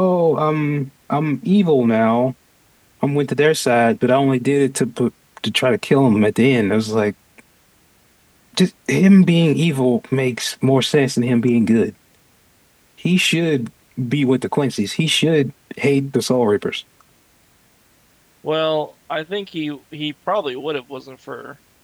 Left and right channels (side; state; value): both; identical; correlation 1.00